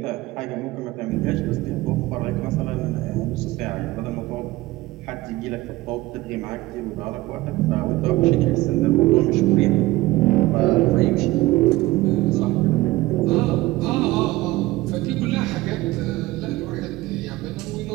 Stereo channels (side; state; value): left; quieter; 18.8 dB